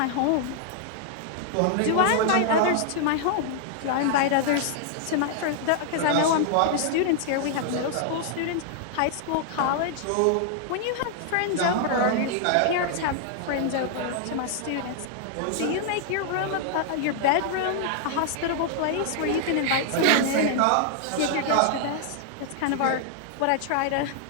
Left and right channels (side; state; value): both; different; correlation -0.01